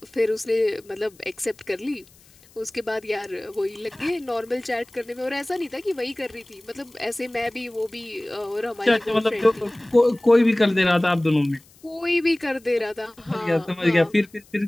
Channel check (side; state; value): left; noise; hiss, 28 dB below the sound